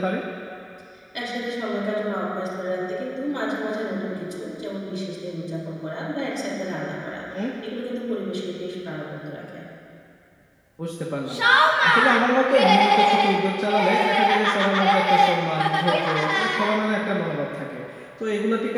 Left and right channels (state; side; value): identical; both; correlation 1.00